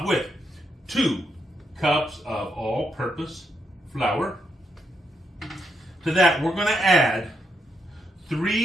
with 2 cups of all-purpose flour. To that, we're going to add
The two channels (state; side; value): normal; both; correlation 0.80